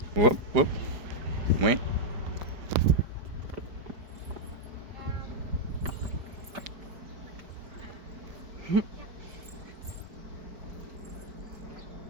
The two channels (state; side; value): late; left; 4.9 ms